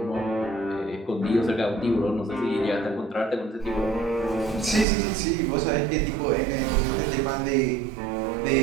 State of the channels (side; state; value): left; drops out; at 4.9 s